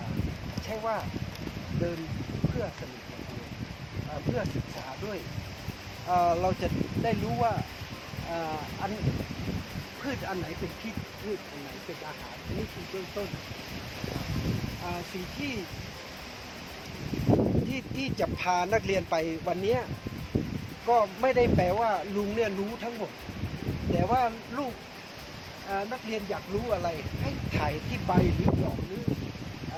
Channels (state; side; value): identical; both; correlation 1.00